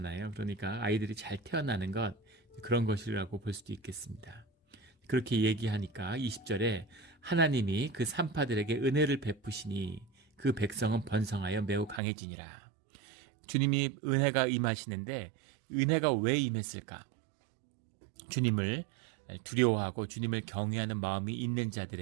그러니까 아이들이 잘 태어나는 것, 그런 것이라고 볼 수도 있겠습니다. 그렇게 얘기하니까 20절에 하나님이 그 산파들에게 은혜를 베푸시니 그 백성은 번성하여 매우 강해지니라. 주님이 은혜가 임하시는데 은혜가 왜 임했을까? 주님을 두려워하고 주님을 경외하는 마음이 있는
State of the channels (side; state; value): left; drops out; at 12.0 s